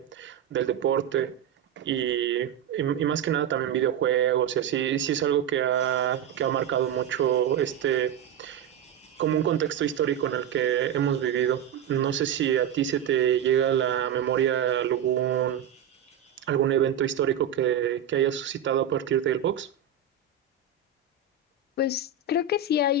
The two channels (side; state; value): left; quieter; 7.9 dB